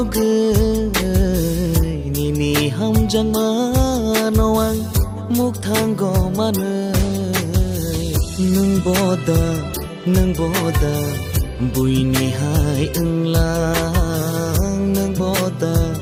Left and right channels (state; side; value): identical; both; correlation 1.00